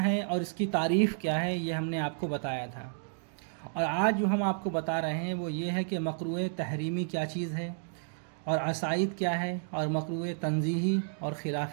ہیں اور اس کی تعریف کیا ہے، یہ ہم نے آپ کو بتایا تھا۔ اور آج جو ہم آپ کو بتا رہے ہیں وہ یہ ہے کہ مکروہ تحریمی کیا چیز ہے، اور عصائد کیا ہے، اور مکروہ تنزیہی اور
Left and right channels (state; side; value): silent; left; digital silence